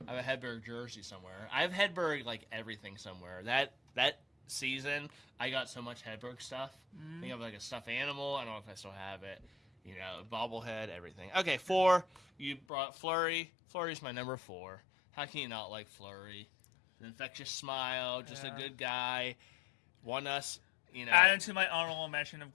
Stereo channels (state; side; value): drops out; right; at 12.6 s